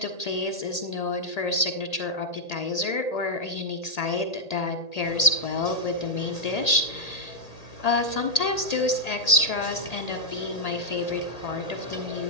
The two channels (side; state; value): right; late; 1.8 ms